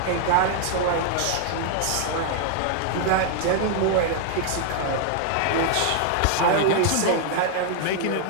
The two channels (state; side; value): different; both; correlation 0.00